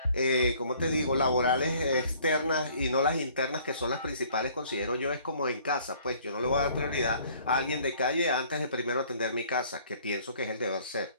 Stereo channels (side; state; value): both; inverted; correlation -0.57